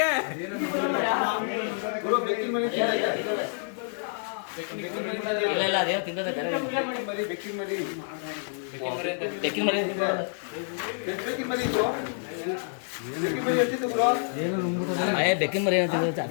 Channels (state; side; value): silent; right; 59 dB below the other